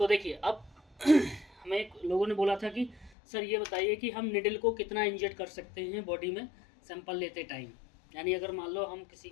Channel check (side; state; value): right; drops out; at 3.1 s